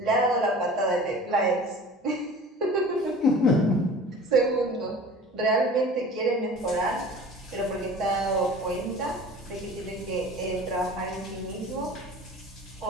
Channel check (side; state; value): both; normal; correlation 0.41